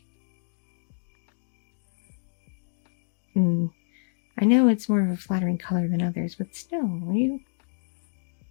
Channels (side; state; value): right; silent; digital silence